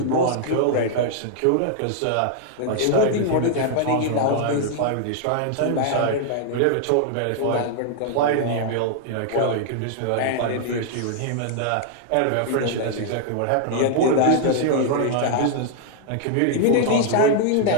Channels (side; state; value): both; different; correlation -0.01